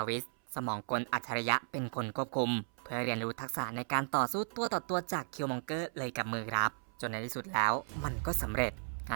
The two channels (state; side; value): silent; left; 54 dB below the other